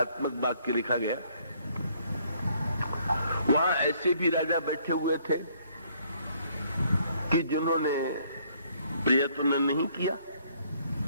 वाक्य लिखा गया। वहां ऐसे भी राजा बैठे हुए थे कि जिन्होंने प्रयत्न नहीं किया,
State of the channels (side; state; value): both; inverted; correlation -0.65